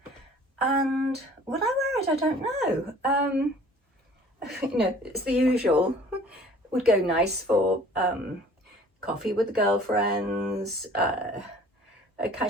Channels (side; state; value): both; normal; correlation 0.51